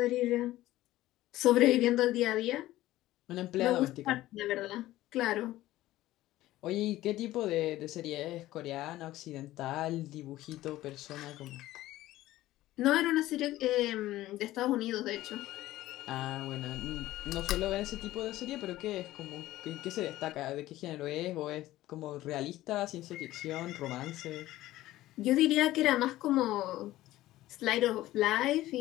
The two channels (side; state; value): right; quieter; 15.7 dB